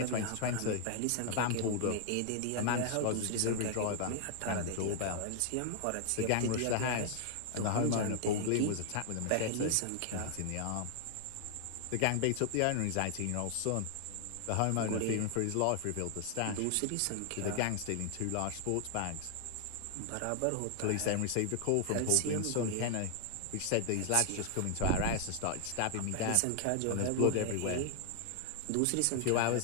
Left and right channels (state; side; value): different; both; correlation 0.00